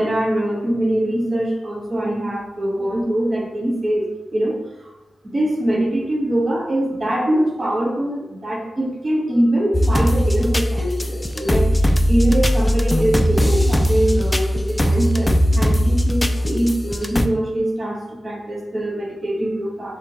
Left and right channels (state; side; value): normal; both; correlation 0.96